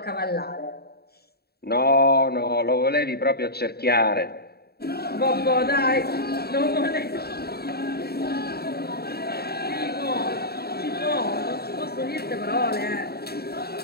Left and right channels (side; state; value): right; late; 0.46 ms